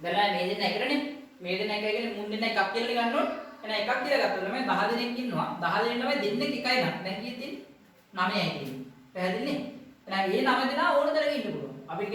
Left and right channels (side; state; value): both; identical; correlation 1.00